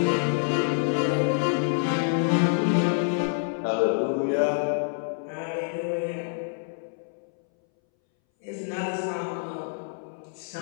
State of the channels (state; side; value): silent; right; 60 dB below the other